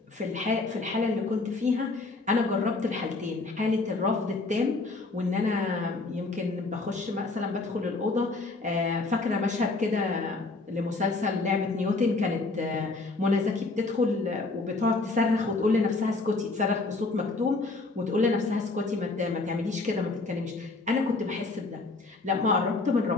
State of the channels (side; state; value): right; quieter; 3.5 dB